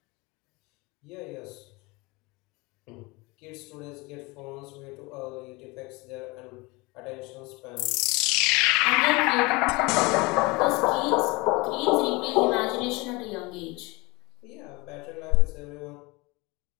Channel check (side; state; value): right; quieter; 24.8 dB